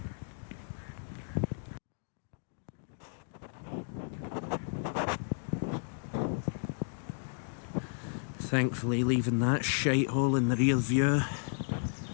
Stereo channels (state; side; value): silent; right; digital silence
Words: Thankfully leaving that shithole in the rear view,